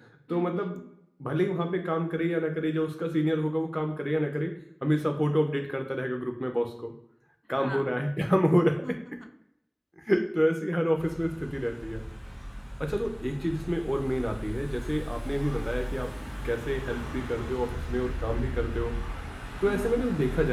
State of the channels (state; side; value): identical; both; correlation 1.00